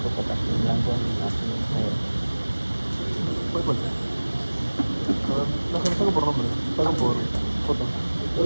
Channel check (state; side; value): inverted; both; correlation -1.00